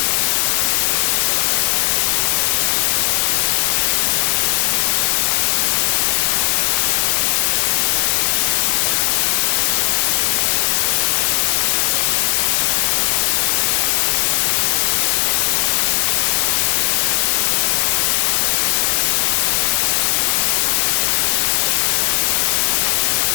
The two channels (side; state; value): right; silent; digital silence